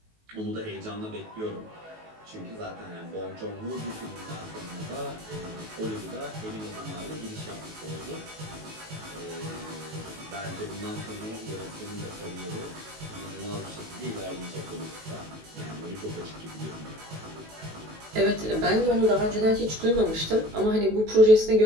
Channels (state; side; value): late; left; 19 ms